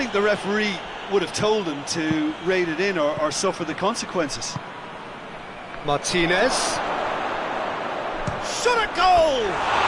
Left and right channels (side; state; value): both; identical; correlation 1.00